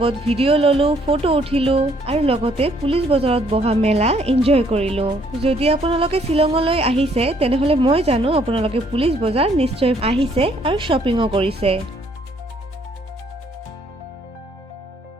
ভিডিঅ' ললো, ফটো উঠিলো আৰু লগতে পুলিচ বজাৰত বহা মেলা এনজয় কৰিলো। যদি আপোনালোকে শ্বিলঙলৈ আহিছে তেনেহলে মই জানো আপোনালোকে পুলিচ বজাৰ নিশ্চয় আহিছে আৰু শ্বপিঙো কৰিছে।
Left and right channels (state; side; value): normal; both; correlation 0.66